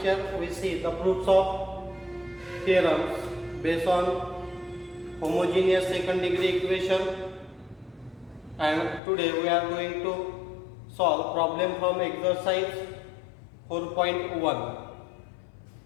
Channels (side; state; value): right; drops out; at 9.0 s